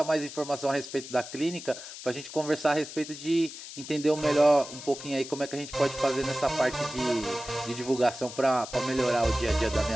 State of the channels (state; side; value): noise; left; hiss, 12 dB below the sound